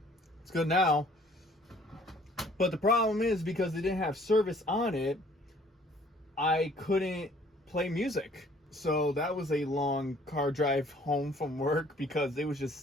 it's good now. But the problem is, because they didn't have service on it, I couldn't play music. So that was a long car drive home from work, because it was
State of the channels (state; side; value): normal; both; correlation 0.57